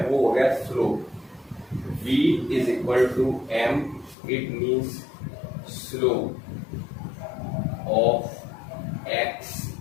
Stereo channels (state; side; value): drops out; right; at 4.2 s